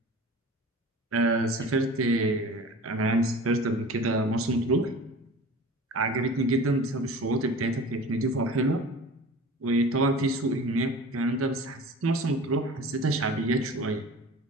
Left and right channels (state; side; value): normal; both; correlation 0.39